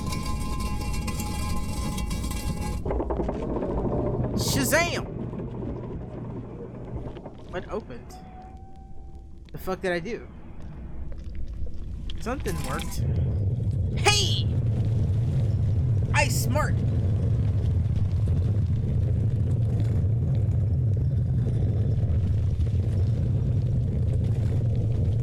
Shazam! What opened? The fuck did I do? Something worked. Hey! I smart!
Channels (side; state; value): both; identical; correlation 1.00